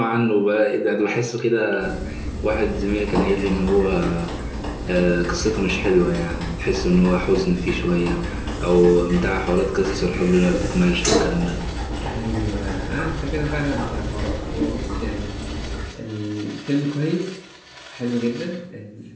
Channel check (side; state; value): both; identical; correlation 1.00